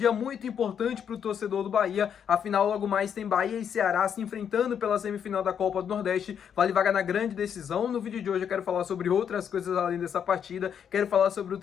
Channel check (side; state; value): right; quieter; 8.1 dB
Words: muito importante para o torcedor do Bahia, afinal logo mais tem Bahia e Ceará se enfrentando pela semifinal da Copa do Nordeste, vale vaga na grande decisão. No vídeo de hoje eu quero falar sobre outras coisas além dessa partida, quero falar sobre o